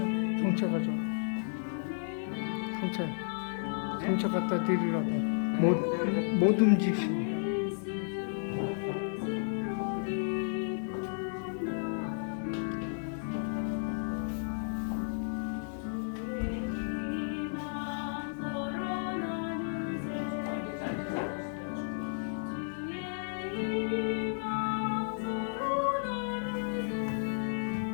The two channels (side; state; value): right; silent; 56 dB below the other